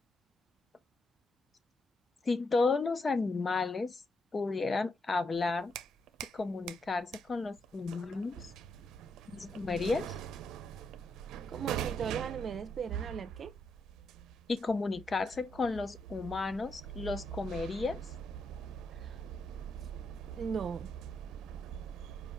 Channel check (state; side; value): normal; both; correlation 0.79